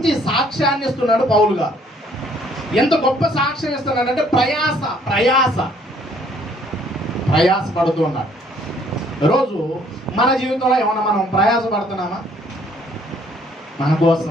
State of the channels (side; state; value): both; normal; correlation 0.62